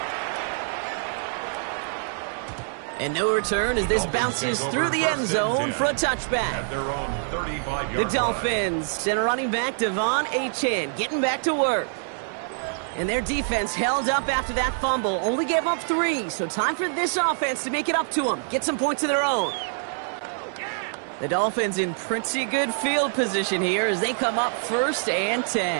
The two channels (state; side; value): silent; left; 61 dB below the other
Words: And no return as this bounces through the end zone for a touchback. At their own 35-yard The line. Dolphins send a running back, Devon Achane, getting back to work. And their defense held up after that fumble. Only gave up 3, so time for this offense to make it up to them. Get some points of their own. The Dolphins in pretty good field position here as they come up 1st and